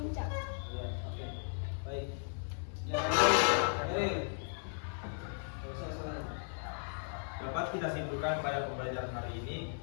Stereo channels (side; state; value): right; silent; 54 dB below the other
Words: Ya, oke. Baik. Yang lain, Dapat kita simpulkan pada pembelajaran hari ini,